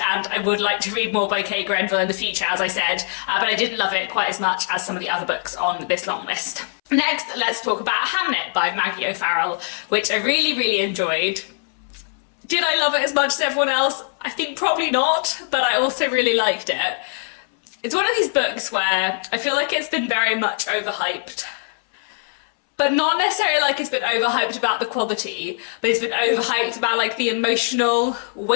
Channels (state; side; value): silent; right; 64 dB below the other